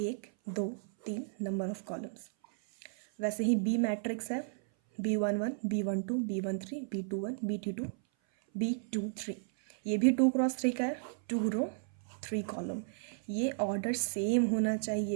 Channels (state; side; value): silent; left; 55 dB below the other